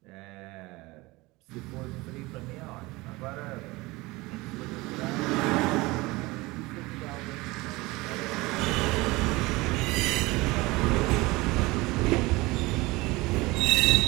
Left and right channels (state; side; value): quieter; left; 22.0 dB